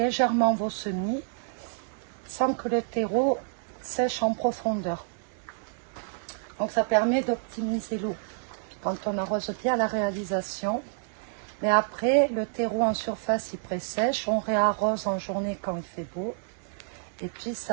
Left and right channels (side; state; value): left; silent; digital silence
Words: vos semis sans que le terreau sèche en profondeur. Donc ça permet d'optimiser l'eau quand on arrose bien la réalisation. Mais après, le terreau en surface il pré-sèche, on réarrose en journée quand il fait beau. Et puis